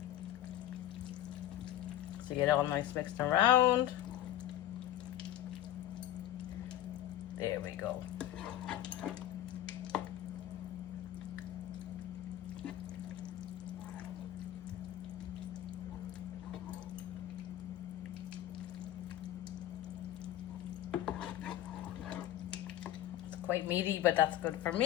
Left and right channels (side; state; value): right; quieter; 12.7 dB